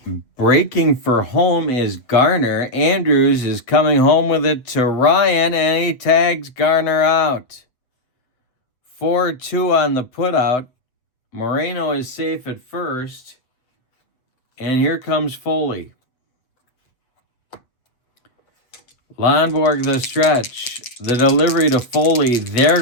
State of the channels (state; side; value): late; right; 7.9 ms